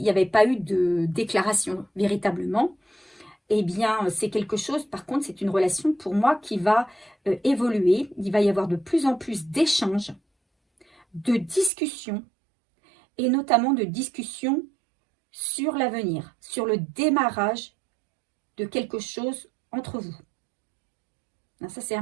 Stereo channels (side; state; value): left; drops out; at 11.7 s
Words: n'y avait pas eu de déclaration véritablement. Eh bien, c'est quelque chose, par contre, c'est une relation pour moi qui va évoluer. Il va y avoir de plus en plus d'échanges, de discussions, et notamment de discussions sur l'avenir, sur le démarrage de quelque chose entre vous. Ça, c'est